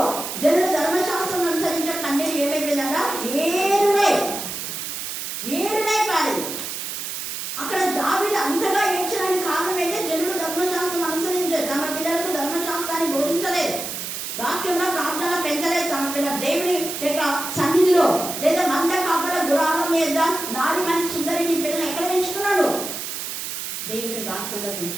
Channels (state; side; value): noise; right; hiss, 5 dB below the sound